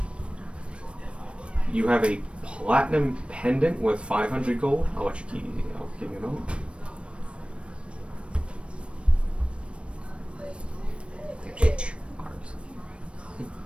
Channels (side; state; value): left; late; 0.059 ms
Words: You have a platinum pendant with 500 gold. I'll let you keep. I'll give you a moment.